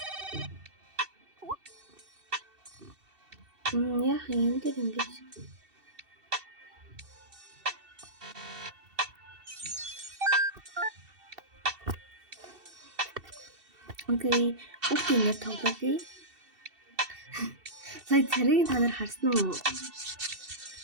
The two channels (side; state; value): left; late; 2.7 ms